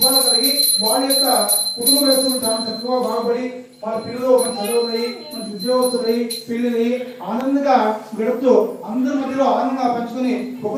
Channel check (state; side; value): identical; both; correlation 1.00